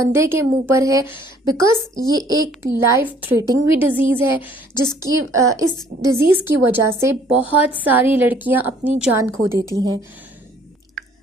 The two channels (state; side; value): normal; both; correlation 0.59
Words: के मुंह पर है, बिकॉज ये एक लाइफ थ्रेटनिंग भी डिज़ीज़ है जिसकी इस डिज़ीज़ की वजह से बहुत सारी लड़कियां अपनी जान खो देती हैं।